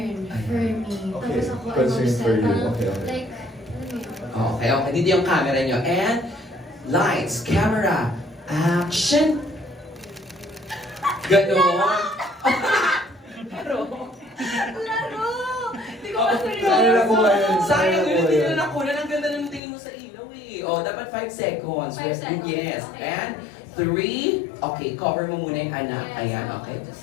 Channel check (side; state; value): right; drops out; at 19.6 s